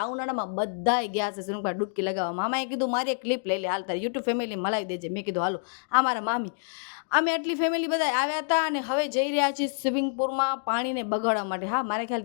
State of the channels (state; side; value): silent; right; digital silence